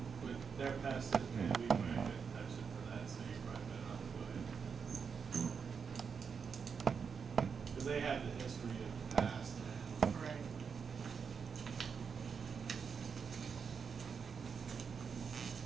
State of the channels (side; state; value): left; quieter; 6.1 dB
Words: with their past history, we might have touched it for that, so you probably better not go ahead. Because they have the history of the past. Right.